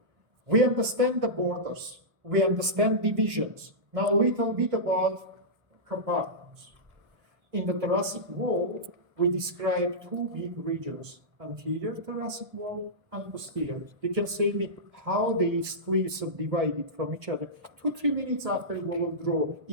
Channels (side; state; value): left; late; 1.2 ms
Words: we understand the borders. We understand divisions. Now a little bit about compartments. In the thoracic wall, we describe two big regions, anterior thoracic wall and posterior. You can say me how these cliffs are divided from each other. 2-3 minutes after we will draw